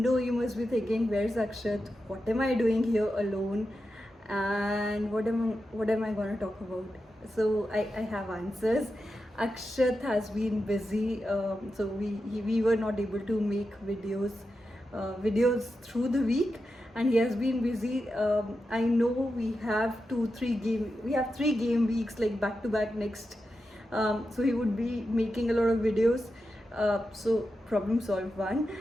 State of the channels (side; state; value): both; normal; correlation 0.89